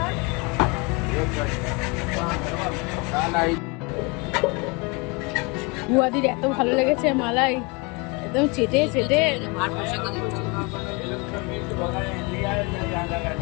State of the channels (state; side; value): quieter; right; 29.2 dB